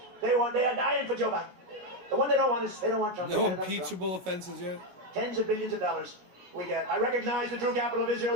They are dying for Joe Biden. The one they don't want is, they don't want Trump. No impeachable offenses yet? Tens of billions of dollars we get. I recognize the true capital of Israel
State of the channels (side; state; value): left; late; 17 ms